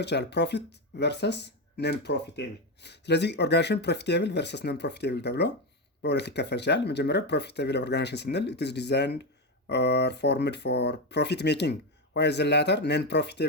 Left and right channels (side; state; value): both; normal; correlation 0.11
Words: ይችላል፣ ፕሮፊት ቨርሰስ ነን ፕሮፊቴብል። ስለዚህ ኦርጋናይዜሽን ፕሮፊቴብል ቨርሰስ ነን ፕሮፊቴብል ተብሎ በሁለት ይከፈል ይችላል። መጀመሪያው ፕሮፊቴብል ኦርጋናይዜሽን ስንል it is designed or formed for profit making, while the latter non